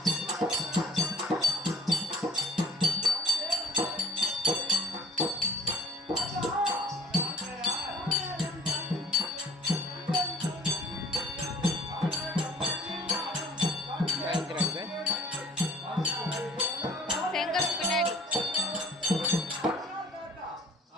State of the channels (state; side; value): normal; both; correlation 0.51